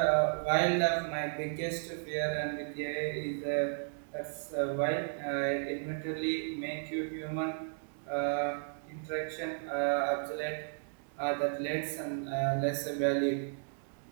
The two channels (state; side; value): silent; left; digital silence